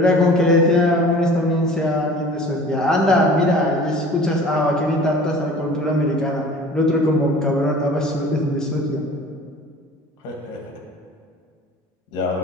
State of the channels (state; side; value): normal; both; correlation 0.45